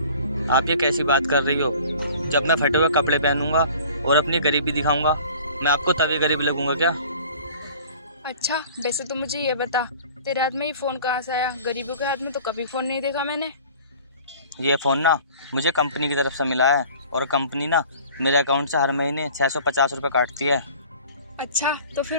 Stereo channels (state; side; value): inverted; both; correlation -0.47